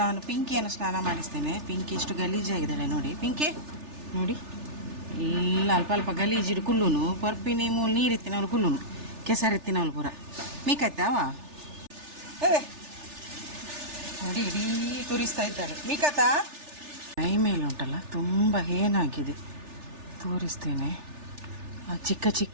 ನಾನು ಪಿಂಕಿಯನ್ನು ಸ್ನಾನ ಮಾಡಿಸ್ತೇನೆ. ಪಿಂಕಿ ಎಷ್ಟು ಗಲೀಜಾಗಿದ್ದಾಳೆ ನೋಡಿ. ಪಿಂಕಿ ನೋಡಿ, ಎಲ್ಲ ಅಲ್ಪ ಅಲ್ಪ ಗಲೀಜಿಡು ಕುಲ್ಲುನು ಪರ್ಪಿನಿ ಮೂಲು ನೀರಿತ್ತಿನವಳು ಕುಲ್ಲುನು ಕೆಸರಿತ್ತಿನವಳು ಪೂರ ಮೀಕಾಯ್ತಾವ ನೋಡಿ. ಇಡೀ ತುರಿಸ್ತಾ ಇದ್ದಾಳೆ ಮೀಕಾತ. ಮೈ ಮೇಲೆ ಉಂಟಲ್ಲ ತುಂಬ ಏನಾಗಿದೆ ತೋರಿಸ್ತೇನೆ. ಆ ಚಿಕ್ಕ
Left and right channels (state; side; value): late; left; 3.4 ms